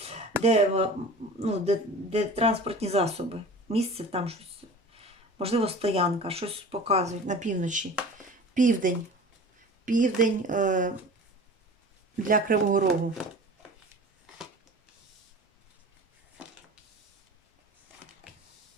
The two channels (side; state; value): both; normal; correlation 0.39